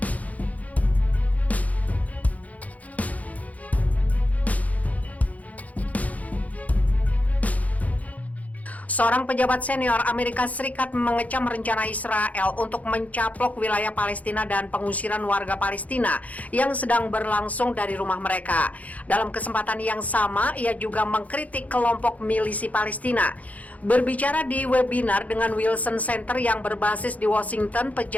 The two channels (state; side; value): late; right; 0.072 ms